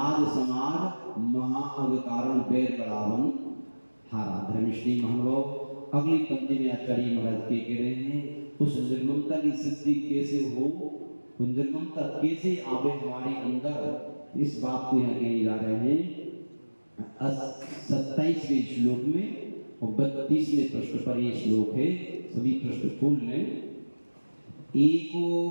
समाज महाअवतारण बैर बरावन हारा। धर्मश्री महानुभाव अगली पंक्ति में आचार्य महाराज के कह रहे हैं, उस निर्ममता की सिद्धि कैसे हो, उस निर्ममता कैसे आवे हमारे अंदर, इस बात को यहाँ कहने जा रहे हैं 27वें श्लोक में और 32वें प्रश्न पर ये श्लोक है। सभी प्रश्न खोल लें। एको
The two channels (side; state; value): both; inverted; correlation -1.00